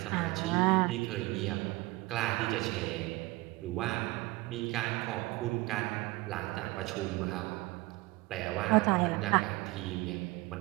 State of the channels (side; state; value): left; quieter; 21.4 dB